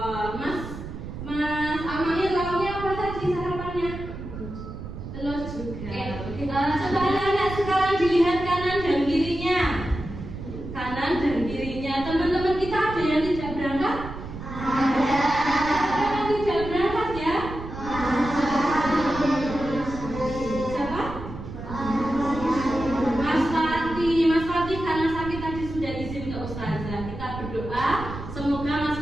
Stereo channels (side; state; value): right; noise; rumble, 10 dB below the sound